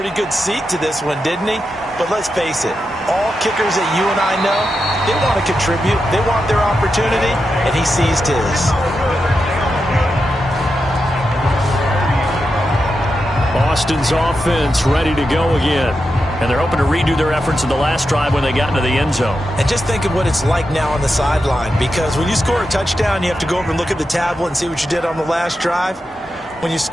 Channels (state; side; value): normal; both; correlation 0.88